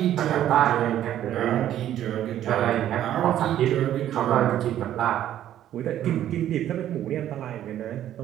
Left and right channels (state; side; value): quieter; left; 11.7 dB